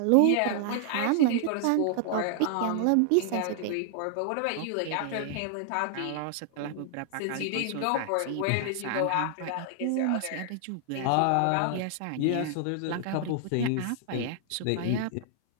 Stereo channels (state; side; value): different; both; correlation 0.00